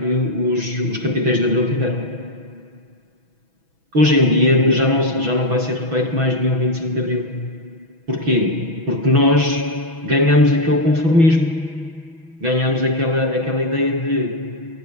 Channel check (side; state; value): left; late; 6.1 ms